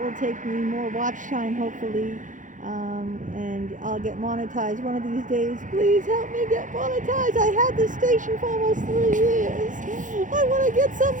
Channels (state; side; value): late; left; 0.37 ms